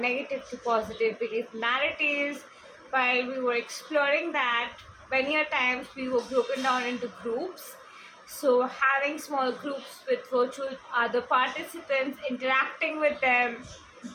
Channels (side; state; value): both; identical; correlation 1.00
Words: negative to positive belief narratives, while we were exploring that. Many a times we were broken down into groups, so having small groups with virtual other participants, interacting with them,